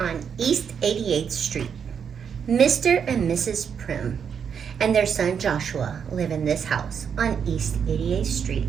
East 88th Street. Mr. and Mrs. Primm and their son Joshua live in this house on East 88th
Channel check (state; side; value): quieter; left; 7.3 dB